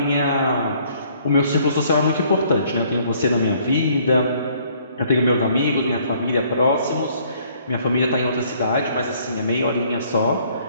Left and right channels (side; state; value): both; inverted; correlation -0.62